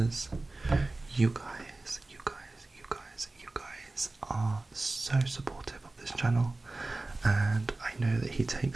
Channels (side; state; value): left; quieter; 3.1 dB